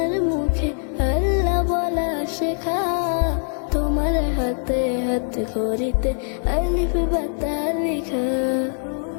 মুখে আল্লাহ বলা শেখা, তোমার হাতে হাত খড়িতে আলিফ বাতা লিখা।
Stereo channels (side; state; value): right; silent; digital silence